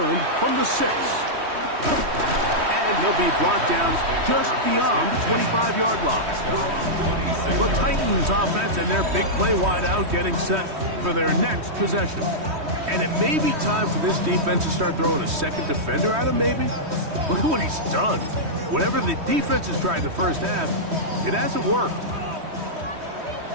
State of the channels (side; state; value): left; late; 3.1 ms